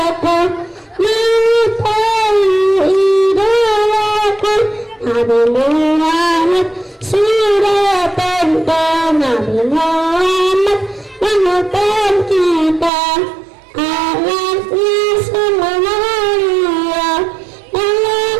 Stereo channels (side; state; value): left; drops out; at 12.9 s